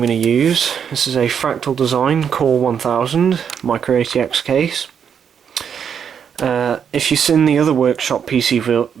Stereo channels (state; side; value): quieter; left; 7.6 dB